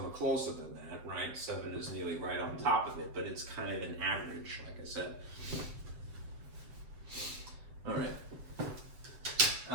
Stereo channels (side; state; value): left; late; 7.8 ms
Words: are closer than that, right? 7 is nearly right on top of it, but it's kind of an average, like I said. All right.